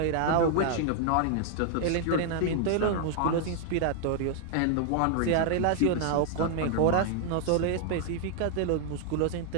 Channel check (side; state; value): both; different; correlation 0.00